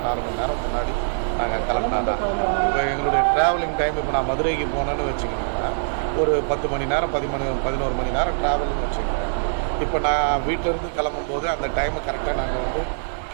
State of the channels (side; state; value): left; silent; 61 dB below the other